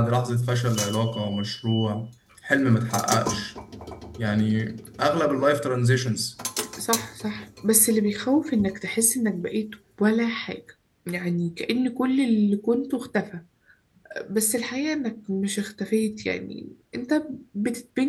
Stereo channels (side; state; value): both; identical; correlation 1.00